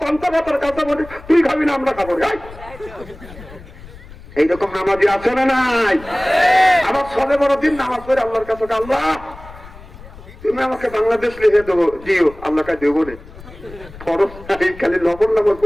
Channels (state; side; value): noise; left; rumble, 18 dB below the sound